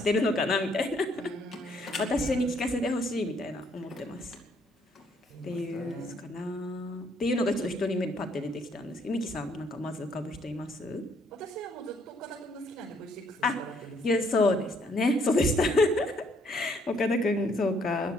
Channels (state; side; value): normal; both; correlation 0.68